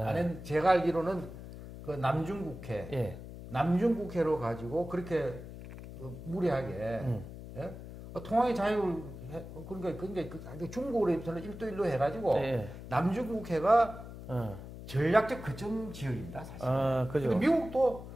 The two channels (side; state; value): left; noise; hum, 12 dB below the sound